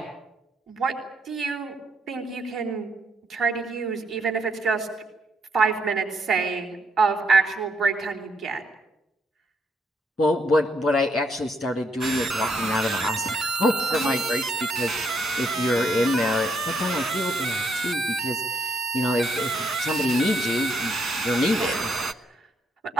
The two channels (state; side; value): normal; both; correlation 0.74